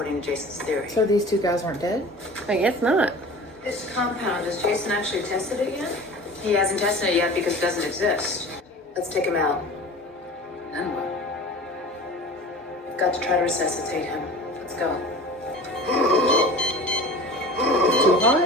to Jason's theory. So these two guys weren't dead? I guess not. This compound, has Jason actually tested it yet? He hasn't tested it yet because it doesn't exist. Let's take him out. Then what? We've got to try to resuscitate him. Let's go. It's too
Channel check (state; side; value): normal; both; correlation 0.39